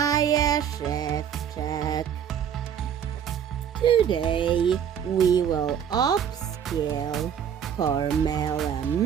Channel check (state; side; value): quieter; left; 8.5 dB